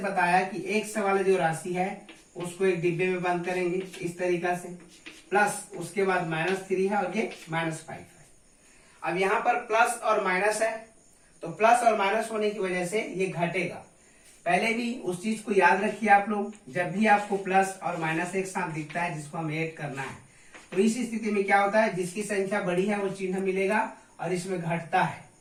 बताया कि x वाला जो राशि है उसको एक डिब्बे में बंद करेंगे इस तरीका से, प्लस उसके बाद -3 है और ये -5 है। अब यहाँ पर प्लस और माइनस है, तो प्लस और माइनस होने की वजह से ये घटेगा। पहले भी उस चीज को याद रखिए आप लोग, जब भी आपको प्लस और माइनस एक साथ दिखता है जिसको हमें ऐड करना है, तो इस स्थिति में क्या होता है, जिसकी संख्या बड़ी है वो चिन्ह मिलेगा और इसमें घटता है।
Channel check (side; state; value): both; identical; correlation 1.00